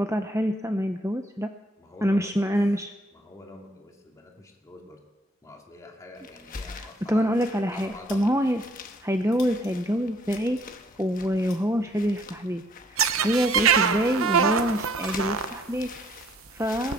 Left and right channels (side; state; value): both; normal; correlation 0.63